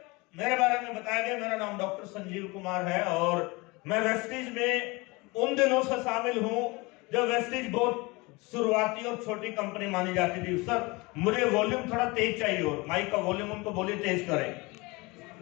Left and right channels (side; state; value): right; quieter; 24.9 dB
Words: मेरे बारे में बताया गया, मेरा नाम डॉक्टर संजीव कुमार है और मैं वेस्टीज में उन दिनों से शामिल हूं जब वेस्टीज बहुत शुरुआती और छोटी कंपनी मानी जाती थी। सर मुझे वॉल्यूम थोड़ा तेज चाहिए, और माइक का वॉल्यूम उनको बोलिए तेज करें।